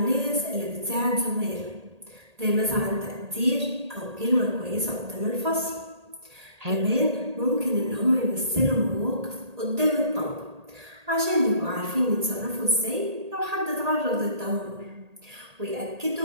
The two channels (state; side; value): late; left; 1.8 ms